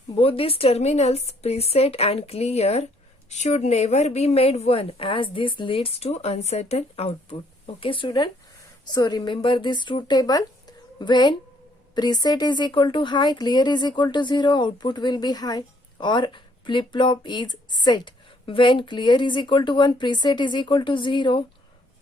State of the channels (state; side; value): normal; both; correlation 0.66